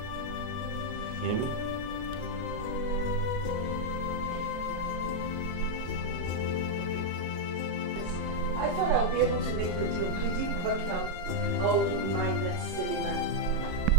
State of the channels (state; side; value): late; left; 33 ms